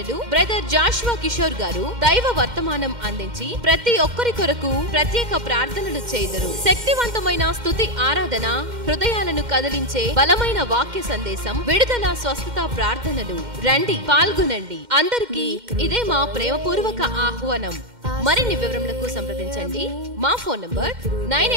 బ్రదర్ జాషువా కిషోర్ గారు దైవ వర్తమానం అందించి ప్రతి ఒక్కరి కొరకు ప్రత్యేక ప్రార్థనలు చేయుదురు. శక్తివంతమైన స్తుతి ఆరాధన, హృదయాలను కదిలించే బలమైన వాక్య సందేశం, విడుదల స్వస్థత ప్రార్థనలు. రండి, పాల్గొనండి. అందరికీ ఇదే మా ప్రేమపూర్వక ఆహ్వానం. మరిన్ని వివరములకు సంప్రదించండి. మా ఫోన్ నంబర్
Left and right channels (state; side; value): late; left; 2.1 ms